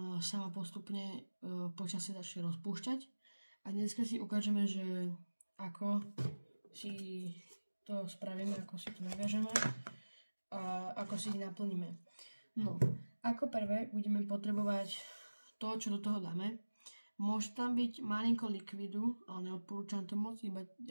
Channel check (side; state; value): both; inverted; correlation -1.00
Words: sama postupne počasie začne rozpúšťať. A dneska si ukážeme, že ako si to spravíme, ako si to naviažeme a ako si ich naplníme. No, ako prvé budeme potrebovať to, čo do toho dáme. Môže tam byť malinko likvidu, ale neodporúčam to moc, iba